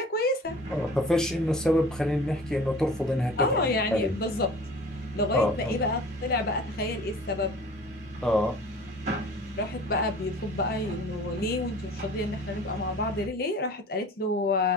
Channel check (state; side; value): normal; both; correlation 0.44